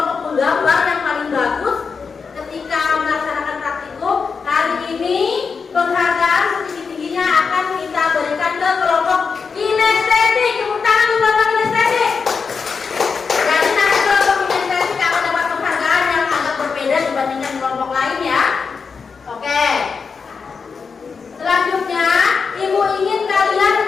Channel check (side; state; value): right; quieter; 5.4 dB